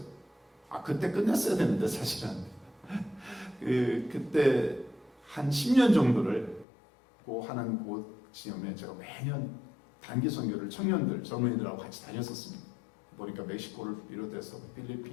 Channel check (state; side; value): drops out; right; at 6.7 s